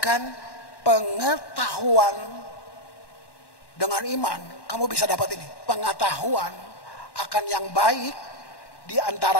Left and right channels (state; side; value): late; right; 1.1 ms